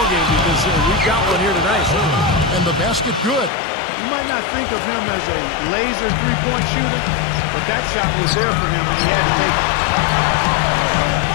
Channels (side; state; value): right; drops out; at 3.5 s